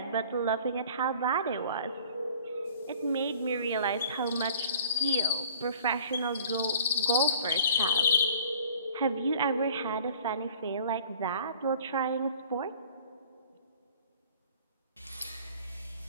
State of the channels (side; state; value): both; inverted; correlation -0.49